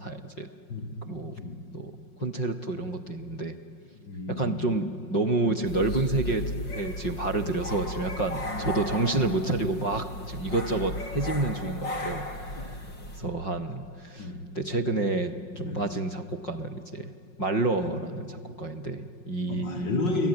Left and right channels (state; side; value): late; right; 5.5 ms